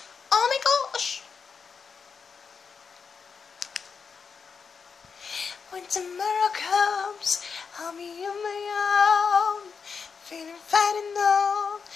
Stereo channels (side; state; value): right; quieter; 5.8 dB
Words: Oh my gosh. When tomorrow comes, I'll be on my own, feeling fine and known,